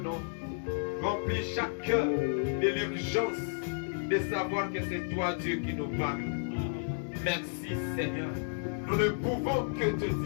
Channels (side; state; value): right; silent; digital silence